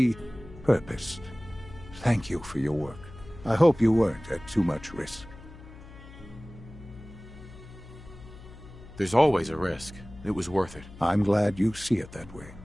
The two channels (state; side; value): noise; left; hum, 17 dB below the sound